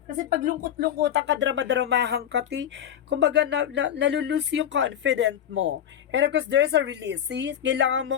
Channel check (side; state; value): right; quieter; 10.0 dB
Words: Kasi pag lungkot-lungkotan ka, drama-dramahan ka, kumbaga nalulus yung confident mo. And of course, there's a release. See? Kailangan